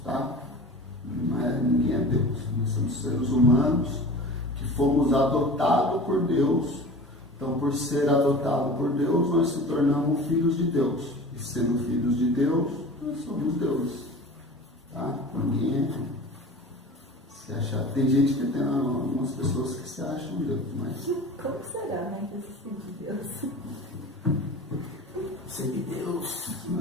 tá? Ninguém é Deus. Nós somos seres humanos que fomos adotados por Deus. Então, por ser adotado por Deus, nós se tornamos filhos de Deus. E sendo filhos de Deus, nós somos deuses. Tá? Ninguém se achar. Tem gente que tem algumas pessoas que se acham Deus, mas. Como será, né? Desistir de Deus. Ser de Deus. Se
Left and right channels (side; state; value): both; normal; correlation 0.38